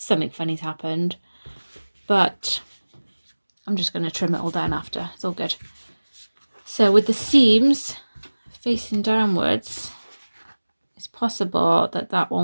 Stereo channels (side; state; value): both; inverted; correlation -1.00